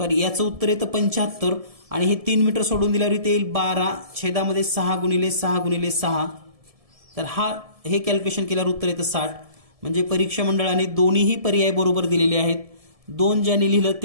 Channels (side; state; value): left; late; 1.7 ms